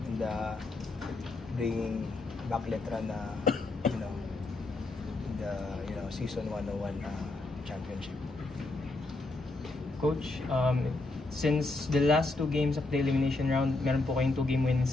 and bringing back Letra na in the season 101 championship. Coach, since the last two games of the elimination round, meron po kayong 2-game winning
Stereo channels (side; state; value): right; quieter; 3.1 dB